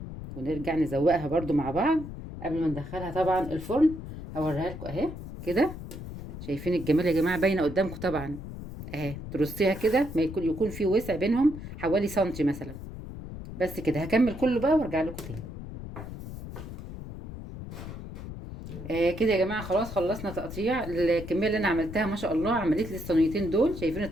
ونرجع نزوقها برضو مع بعض قبل ما ندخلها طبعا الفرن. هوريها لكم اهي كده. شايفين الجمال يا جماعه؟ باينه قدامكم طبعا اهي. ترصيها كده ما يكون في وسع بينهم حوالي سنتي مثلا. بس كده هكمل كله بقى وارجع لكم تاني. كده يا جماعه خلاص خلصنا تقطيع. الكميه اللي انا عملتها ما شاء الله عملت لي الصينيتين دول. شايفين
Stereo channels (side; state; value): left; noise; rumble, 10 dB below the sound